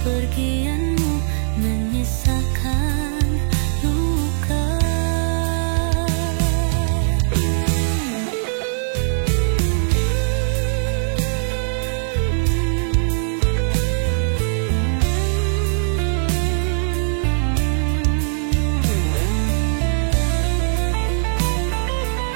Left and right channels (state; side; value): silent; left; 55 dB below the other